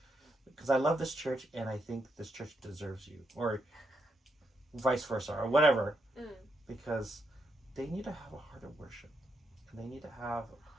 because I love this church, and I think this church deserves you, or vice versa, or whatever, because they need to have a heart of worship, and they need to have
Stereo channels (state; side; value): normal; both; correlation 0.80